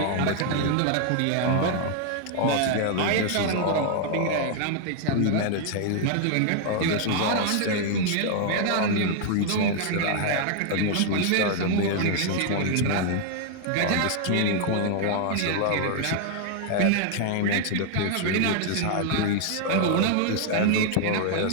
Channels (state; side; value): different; both; correlation 0.00